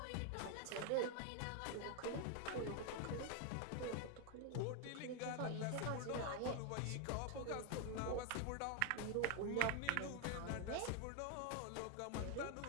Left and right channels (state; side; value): different; both; correlation 0.00